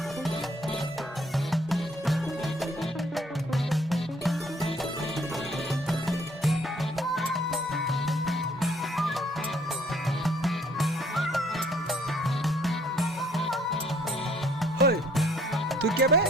ওই, তুই কে বে?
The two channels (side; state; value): both; normal; correlation 0.62